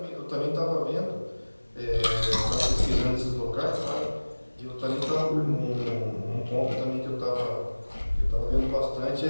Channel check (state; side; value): inverted; both; correlation -1.00